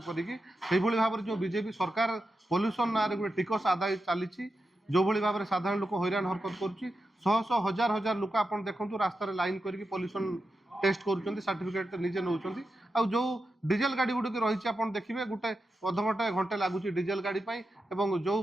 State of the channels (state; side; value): normal; both; correlation 0.89